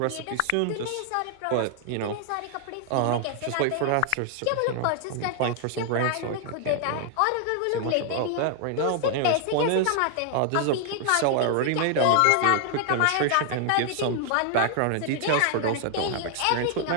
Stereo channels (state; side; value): different; both; correlation 0.00